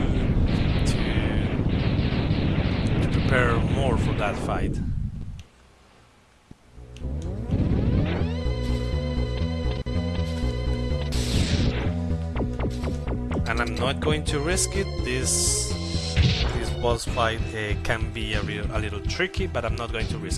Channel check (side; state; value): both; identical; correlation 1.00